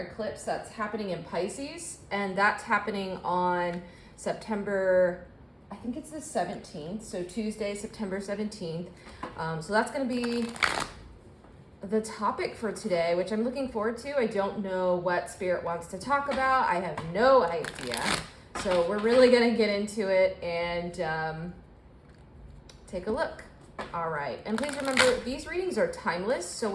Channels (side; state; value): both; identical; correlation 1.00